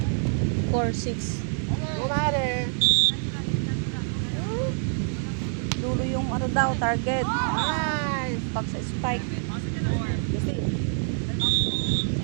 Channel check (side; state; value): left; silent; digital silence